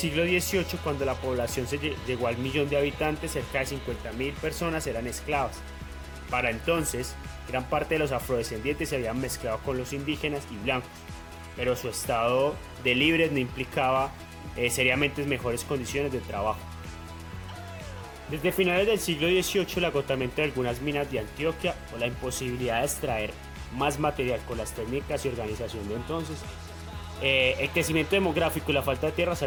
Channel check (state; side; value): identical; both; correlation 1.00